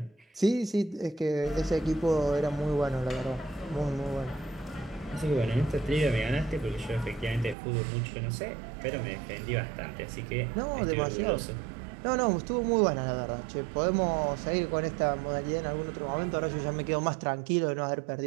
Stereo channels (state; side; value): drops out; left; at 7.6 s